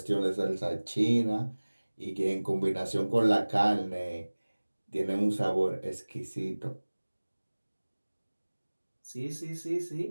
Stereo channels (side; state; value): both; inverted; correlation -1.00